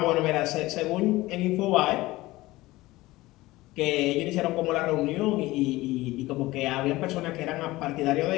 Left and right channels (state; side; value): quieter; right; 18.9 dB